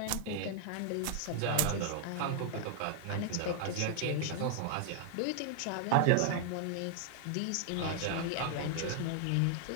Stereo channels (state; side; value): different; both; correlation 0.00